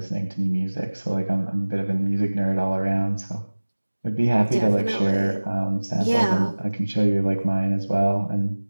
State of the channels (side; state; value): both; inverted; correlation -1.00